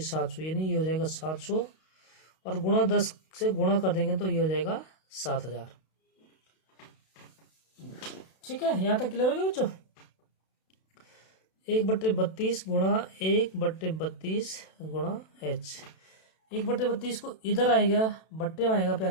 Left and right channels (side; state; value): right; late; 32 ms